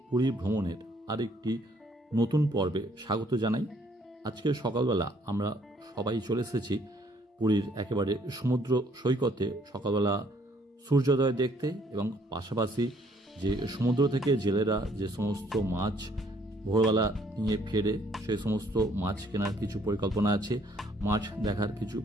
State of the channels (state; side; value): normal; both; correlation 0.64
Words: পুরী ভ্রমণের আরেকটি নতুন পর্বে স্বাগত জানাই। আজকে সকালবেলা আমরা সবাই চলে এসেছি পুরীর একেবারে সমুদ্র সৈকতে সকালবেলা সূর্যোদয় দেখতে, এবং পাশাপাশি যে সমুদ্র থেকে জেলেরা যে সমস্ত মাছ ভোরবেলা নিয়ে ফেরে সেই সমস্ত মাছ কেনার কিছু পরিকল্পনা আছে, মাছ দেখার কিছু